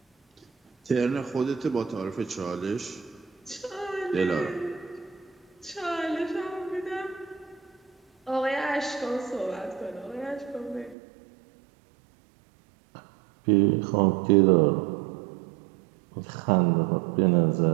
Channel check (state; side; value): drops out; left; at 11.0 s